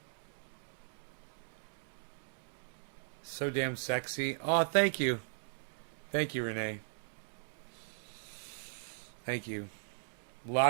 So damn sexy. Oh, thank you. Thank you, Renee. Thank you. A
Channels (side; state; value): left; silent; digital silence